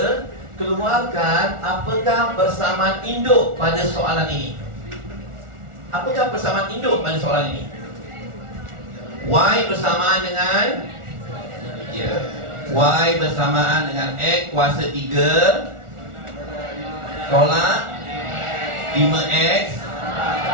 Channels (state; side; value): late; left; 1.4 ms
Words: keluarkan apakah persamaan induk pada soalan ini. Apakah persamaan induk pada soalan ini? Y bersamaan dengan Y bersamaan dengan X kuasa 3 tolak 5X